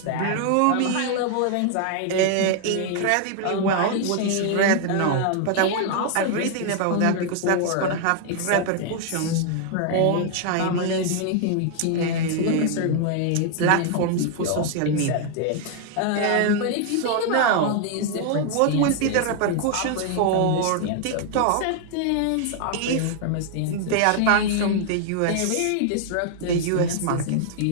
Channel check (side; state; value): both; different; correlation 0.00